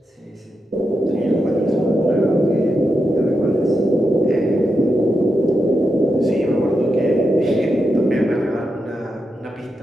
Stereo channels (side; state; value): both; normal; correlation 0.86